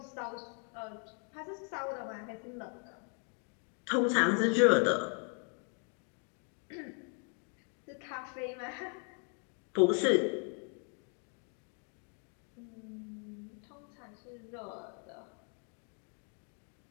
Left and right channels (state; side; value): quieter; right; 39.5 dB